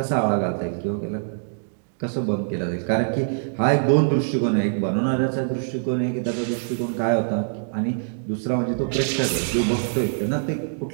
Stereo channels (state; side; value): silent; left; digital silence